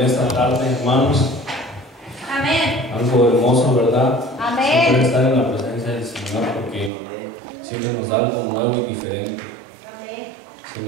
esta tarde, hermanos? Amén. Algo hermoso, ¿verdad? Amén. Siempre estar en la presencia del Señor porque siempre nos da algo nuevo y diferente. Amén. El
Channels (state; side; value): drops out; left; at 6.9 s